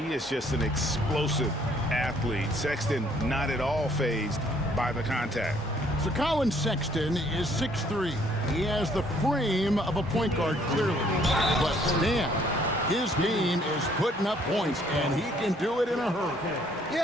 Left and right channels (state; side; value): normal; both; correlation 0.63